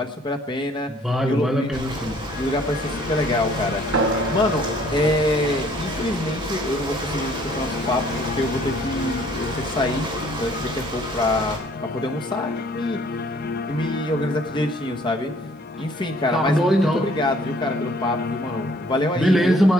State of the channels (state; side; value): normal; both; correlation 0.59